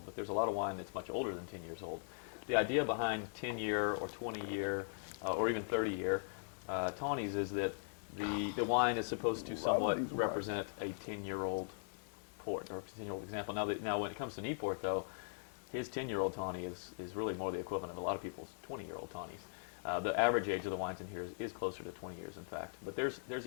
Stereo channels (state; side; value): silent; right; 51 dB below the other